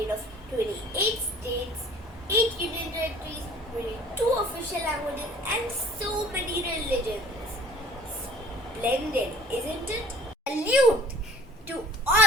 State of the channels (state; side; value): normal; both; correlation 0.51